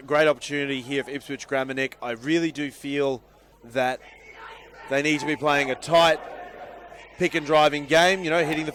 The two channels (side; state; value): both; identical; correlation 1.00